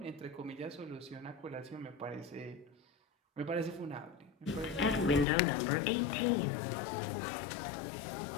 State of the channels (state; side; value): drops out; right; at 5.2 s